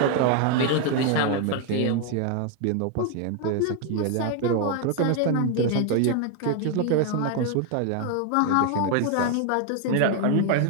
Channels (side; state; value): both; different; correlation 0.01